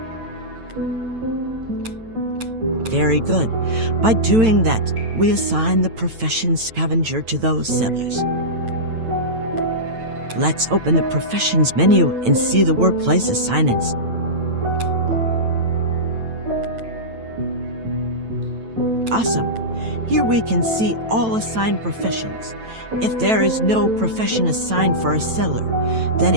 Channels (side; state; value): left; late; 9.0 ms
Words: Very good. By doing that, we assign the profession scavenger to those settlers. Let's open the professions menu and see the workplace assignments. Awesome. Here we can see all assigned professions. If there is no profession assigned for a settler, then